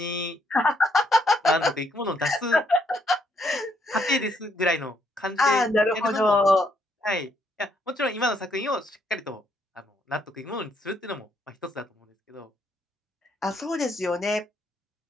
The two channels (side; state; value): both; normal; correlation 0.72